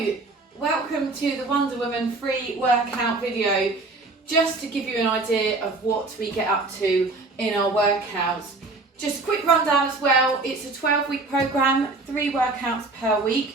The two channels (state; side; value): quieter; left; 3.4 dB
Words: welcome to the Wonder Woman free workout video. Just to give you an idea of what we get up to in our workouts. Just a quick rundown as well, it's a 12-week program, 3 workouts per